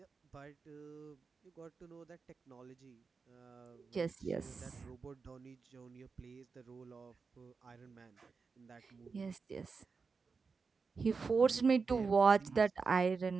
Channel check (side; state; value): left; quieter; 4.9 dB